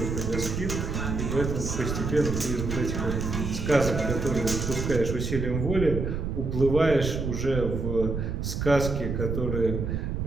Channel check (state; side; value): noise; right; rumble, 2 dB below the sound